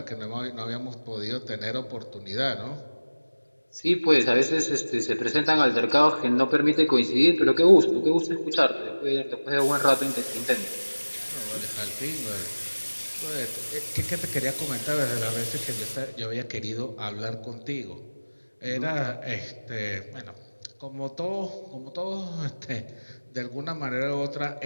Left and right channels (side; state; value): both; inverted; correlation -1.00